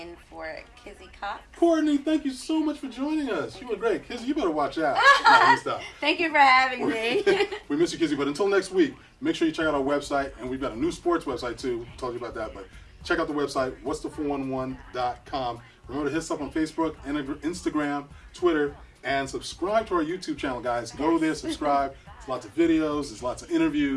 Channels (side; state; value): both; identical; correlation 1.00